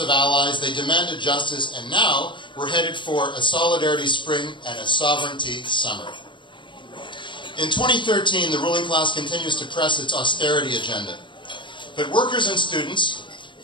allies, they demanded justice, and now we're headed for a solidarity spring and a sovereignty summer. In 2013, the ruling class continues to press its austerity agenda. But workers and students,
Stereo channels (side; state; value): right; late; 0.23 ms